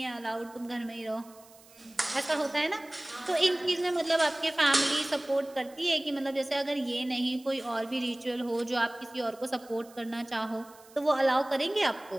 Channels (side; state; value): right; noise; hiss, 25 dB below the sound